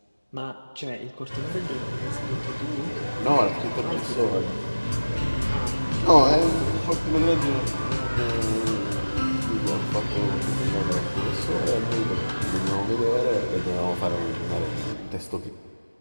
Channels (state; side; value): inverted; both; correlation -1.00